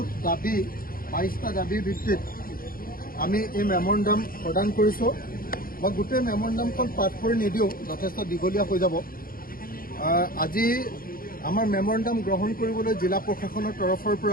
দাবী 22টা দাবীৰ ভিত্তিত আমি এই মেমৰেণ্ডাম প্ৰদান কৰিছোঁ। মই গোটেই মেমৰেণ্ডামখন পাঠ কৰি নিদিওঁ, যথেষ্ট দীঘলীয়া হৈ যাব। আজি আমাৰ মেমৰেণ্ডাম গ্ৰহণ কৰিবলৈ জিলা প্ৰশাসনৰ তৰফৰ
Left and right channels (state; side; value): late; right; 0.42 ms